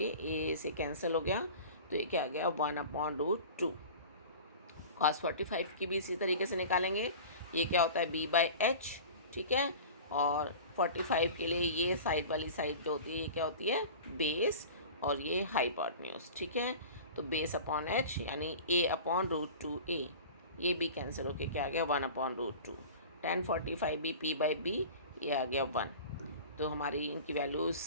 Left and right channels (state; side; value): inverted; both; correlation -0.37